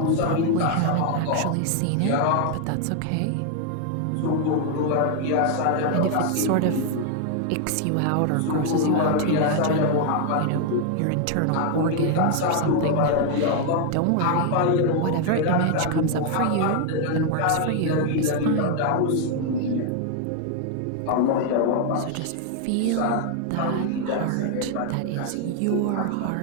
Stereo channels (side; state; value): both; different; correlation 0.00